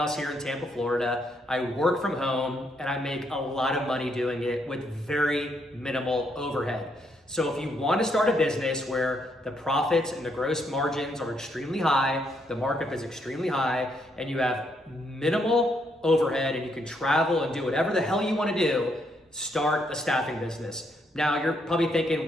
here in Tampa, Florida. I work from home and I make a lot of money doing it with very minimal overhead. So if you want to start a business where the profits and the gross margins are extremely high, the markup is extremely high, and you have minimal overhead and you can travel and do whatever the hell you want to do, start a staffing business. Now you're probably thinking,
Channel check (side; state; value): both; normal; correlation 0.75